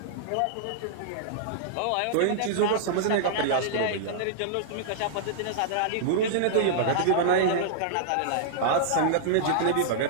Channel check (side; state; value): both; different; correlation -0.02